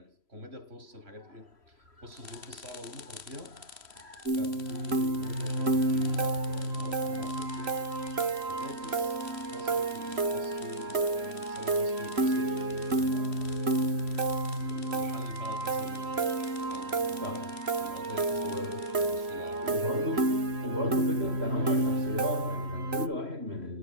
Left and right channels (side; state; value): left; late; 3.0 ms